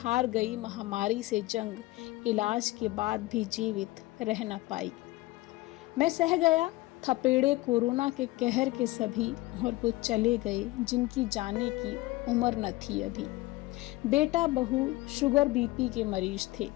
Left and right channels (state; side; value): quieter; right; 19.8 dB